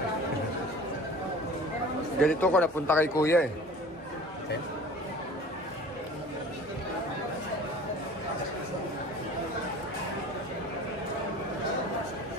Ganito ko napunta kay kuya eh. Okay.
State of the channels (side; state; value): both; normal; correlation 0.43